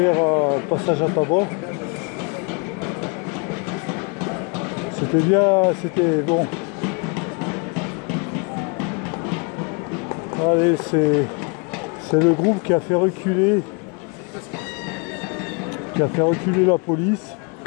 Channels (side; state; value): right; quieter; 33.1 dB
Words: un passage à tabac. C'était bien, c'était bon. Allez, c'est le groupe qui a fait reculer la police.